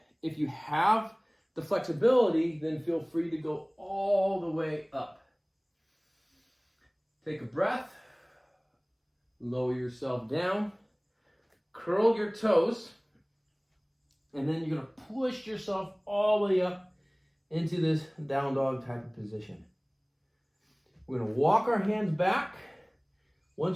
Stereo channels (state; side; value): identical; both; correlation 1.00